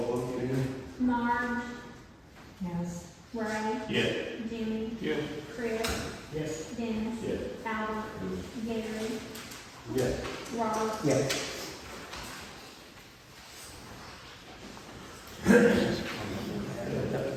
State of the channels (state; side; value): identical; both; correlation 1.00